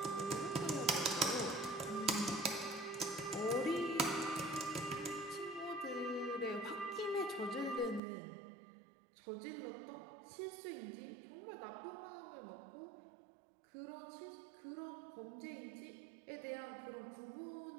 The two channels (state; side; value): drops out; left; at 8.0 s